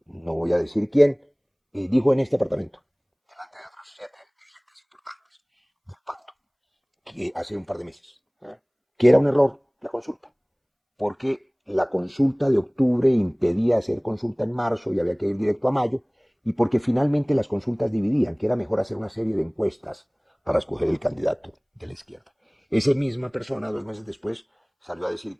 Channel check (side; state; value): both; identical; correlation 1.00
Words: no voy a decir quién, dijo en este apartamento, delante de otros 7 dirigentes importantes del pacto, que hace un par de meses, que era un error la consulta, porque la consulta de octubre impedía hacer consulta en marzo y había que ir directo a mayo, y porque finalmente las consultas dividían, que era mejor hacer una serie de encuestas para escoger el candidato de la izquierda. Esa misma persona, 2 meses después, salió a decir